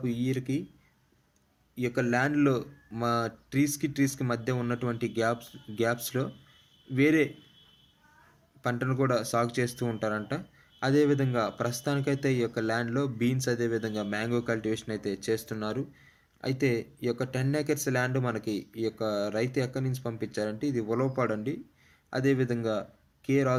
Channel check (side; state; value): both; identical; correlation 1.00